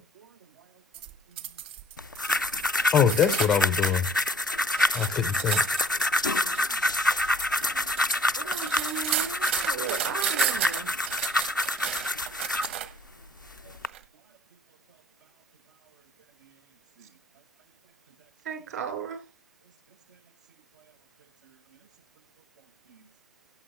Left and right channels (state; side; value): normal; both; correlation 0.56